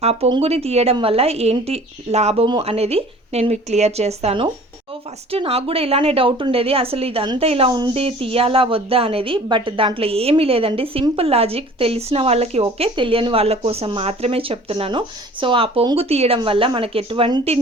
ఆ పొంగుని తీయడం వల్ల ఏంటి లాభము అనేది నేను మీకు క్లియర్ చేస్తాను. సో ఫస్ట్ నాకు కూడా ఇలానే డౌట్ ఉండేది, అసలు ఇదంతా ఇలా ఉంది తీయాలా వద్దా అనేది. బట్ దాంట్లో ఏమీ లేదండి, సింపుల్ లాజిక్. తెలిసిన వాళ్ళకి ఓకే, తెలియని వాళ్ళ కోసం మాత్రమే చెప్తున్నాను. సో ఆ పొంగు తీయడం వల్ల మనకి ఎటువంటి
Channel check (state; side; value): normal; both; correlation 0.47